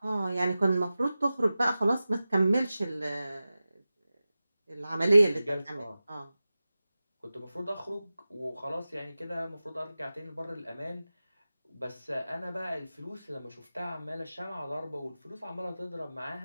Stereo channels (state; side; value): inverted; both; correlation -0.95